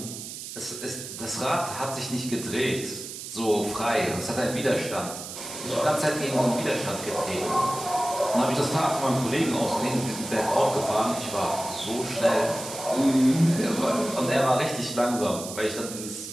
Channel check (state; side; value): noise; right; hiss, 10 dB below the sound